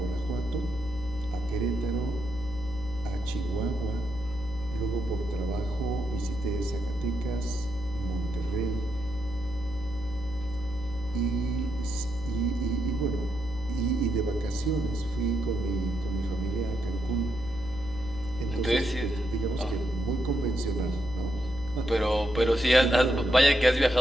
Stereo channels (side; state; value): left; noise; hum, 12 dB below the sound